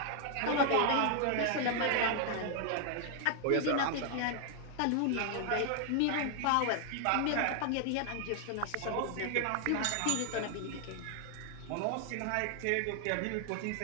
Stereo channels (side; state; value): both; different; correlation 0.00